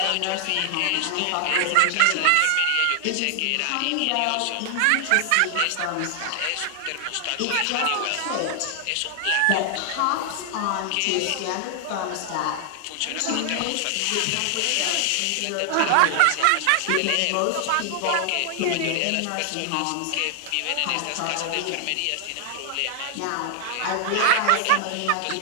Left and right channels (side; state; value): both; different; correlation 0.00